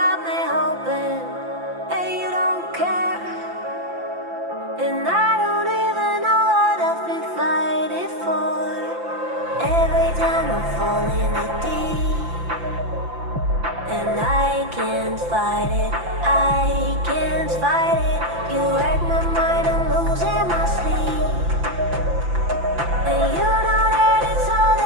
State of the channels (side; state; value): left; late; 5.9 ms